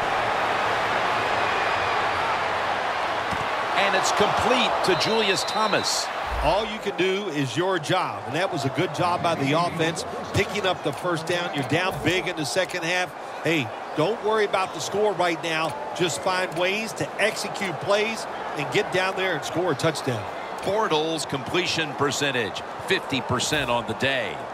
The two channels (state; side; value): identical; both; correlation 1.00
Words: And it's complete to Julius Thomas. All you can do is your job, and that was a good job by the offense, picking up the first down. You're down big in the second half. Hey, don't worry about the score right now. Just find ways to execute plays and get down there and score a touchdown. Bortles completion percentage, 50% on the day.